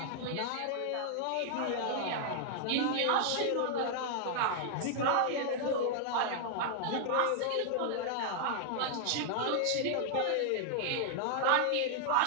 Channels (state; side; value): different; both; correlation 0.00